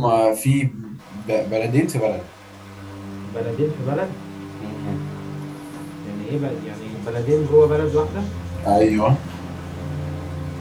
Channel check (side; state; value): both; identical; correlation 1.00